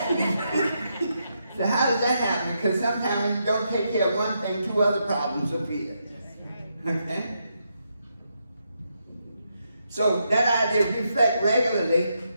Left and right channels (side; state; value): both; inverted; correlation -0.81